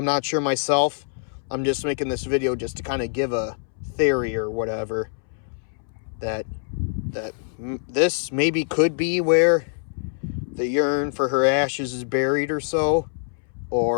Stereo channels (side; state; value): right; silent; 62 dB below the other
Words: not sure myself. I'm just making this video just to kind of give a theory or whatever. That this maybe could be where the urn for her ashes is buried or so.